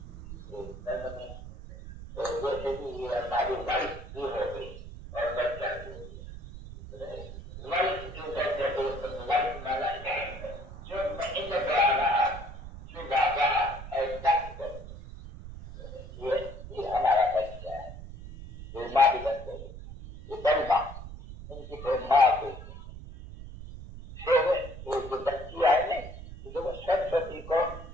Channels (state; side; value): noise; right; rumble, 12 dB below the sound